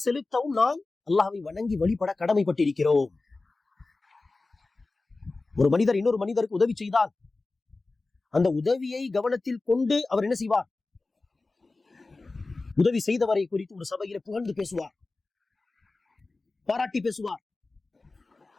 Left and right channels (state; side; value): quieter; right; 3.5 dB